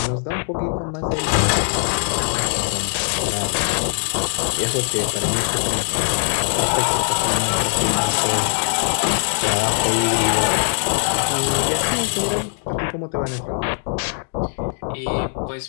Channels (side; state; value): right; silent; 65 dB below the other